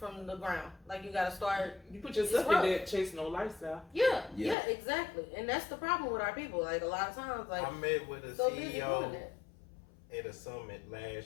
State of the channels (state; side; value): drops out; right; at 4.5 s